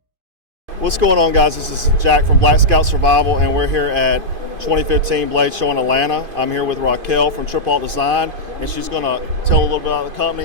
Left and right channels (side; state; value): left; late; 2.5 ms